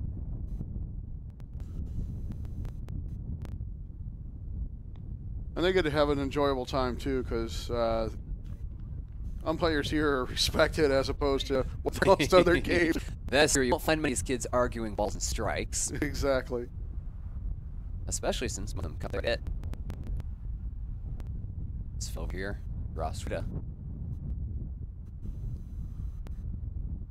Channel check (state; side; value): identical; both; correlation 1.00